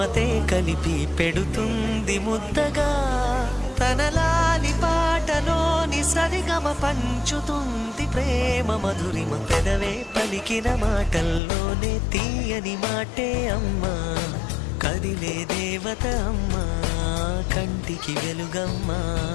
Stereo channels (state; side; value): drops out; right; at 11.4 s